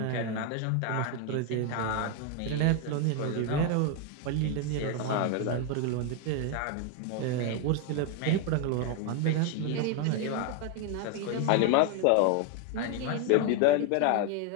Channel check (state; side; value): different; both; correlation 0.01